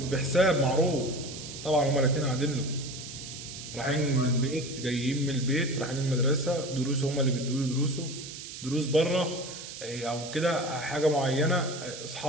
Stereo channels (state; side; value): noise; right; hiss, 11 dB below the sound